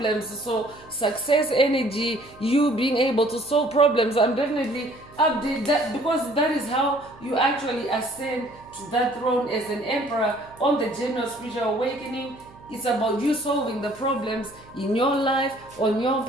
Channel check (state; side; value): noise; right; hum, 23 dB below the sound